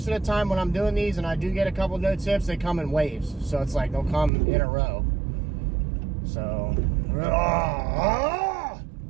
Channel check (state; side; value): drops out; left; at 4.3 s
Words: of the time when I'm doing these and I do get a couple no tips, they come in waves. So it's like they'll come in a row. So